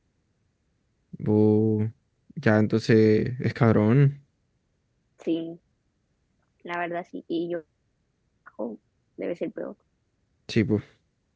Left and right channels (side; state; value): both; identical; correlation 1.00